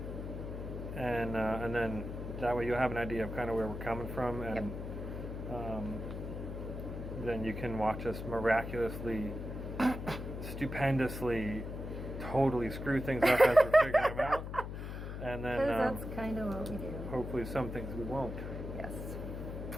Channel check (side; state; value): left; noise; hum, 7 dB below the sound